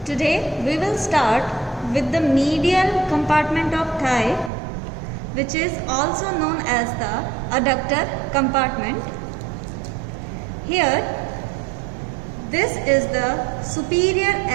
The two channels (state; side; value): drops out; left; at 4.5 s